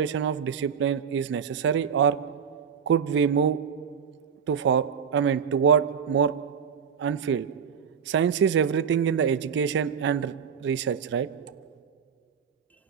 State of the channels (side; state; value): left; quieter; 7.1 dB